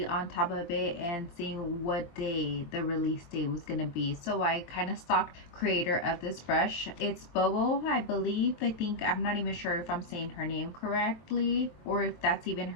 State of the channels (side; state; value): right; late; 23 ms